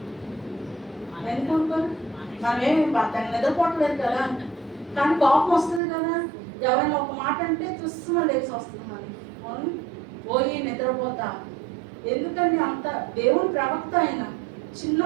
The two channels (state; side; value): drops out; left; at 5.8 s